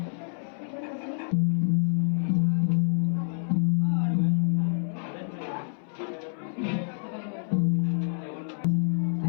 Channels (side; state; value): right; silent; 60 dB below the other